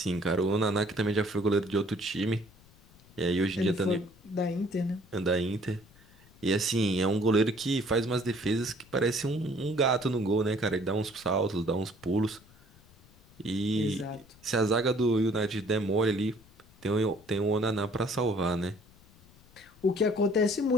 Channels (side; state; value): left; noise; rumble, 26 dB below the sound